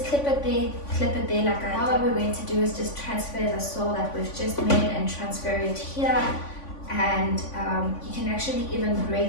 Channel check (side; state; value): right; late; 3.5 ms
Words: clip it there like I did. Now what we're going to do is just transfer the soil that we've just made and transfer it here. And you can actually even